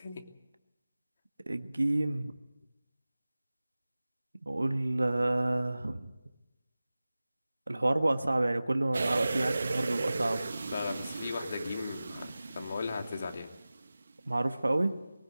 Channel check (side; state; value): both; inverted; correlation -0.97